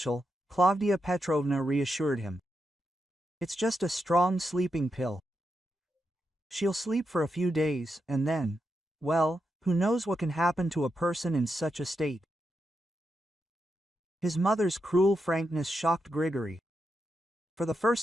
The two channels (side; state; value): both; normal; correlation 0.85